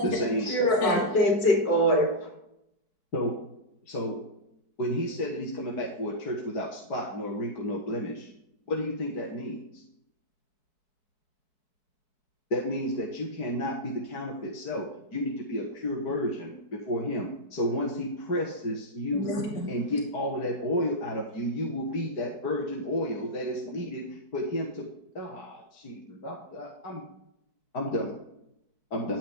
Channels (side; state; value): right; late; 4.6 ms